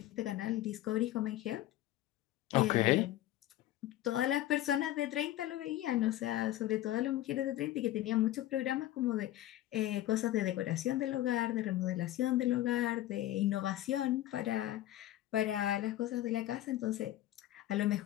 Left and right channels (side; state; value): right; quieter; 14.3 dB